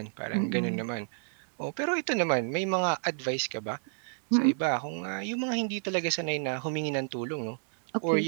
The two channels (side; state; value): left; silent; digital silence